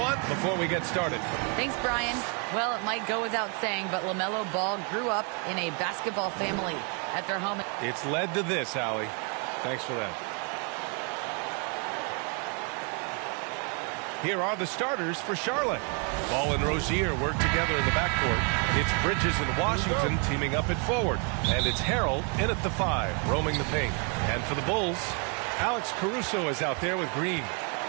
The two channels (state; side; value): quieter; left; 36.5 dB